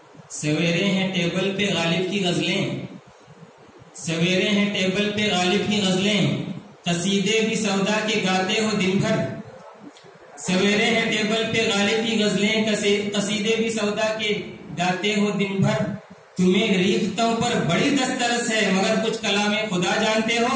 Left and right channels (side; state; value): both; identical; correlation 1.00